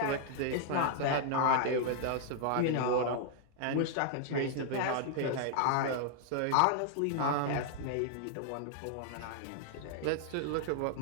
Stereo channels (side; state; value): both; different; correlation 0.00